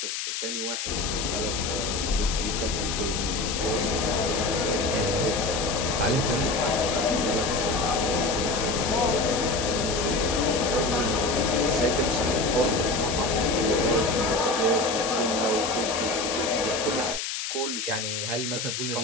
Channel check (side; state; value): left; noise; hiss, 4 dB below the sound